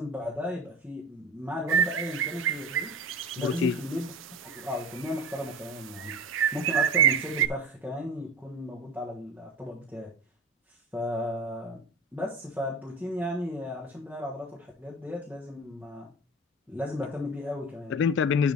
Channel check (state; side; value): normal; both; correlation 0.31